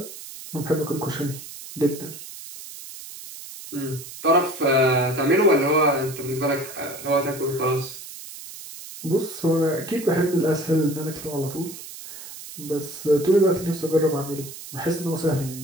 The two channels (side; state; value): right; noise; hiss, 13 dB below the sound